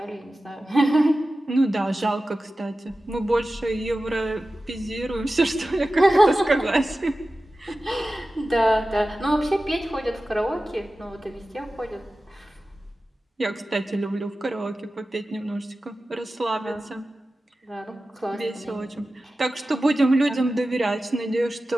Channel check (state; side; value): normal; both; correlation 0.95